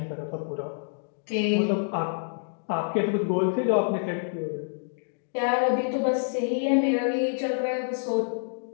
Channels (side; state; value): right; silent; digital silence